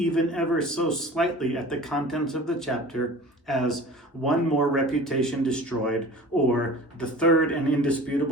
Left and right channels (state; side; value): normal; both; correlation 0.40